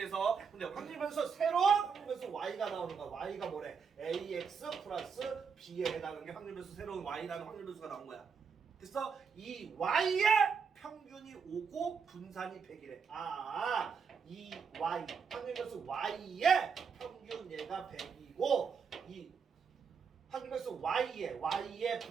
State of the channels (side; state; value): left; quieter; 6.0 dB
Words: 근데 확률변수 새로운 확률변수 y가 나오는 거야. y가 뭐래? ax 플러스 b에 해당하는 게 확률변수 새로운 y라는 확률변수가 나온 거야. 됐어? 이 y의 평균이 5고 분산이 100이래. 이 y 확률변수 y의 평균 얘가 100이고 이 확률변수 y의